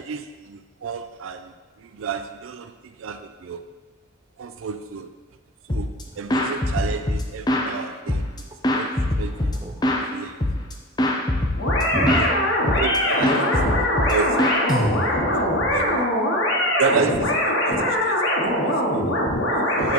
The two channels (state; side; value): normal; both; correlation 0.25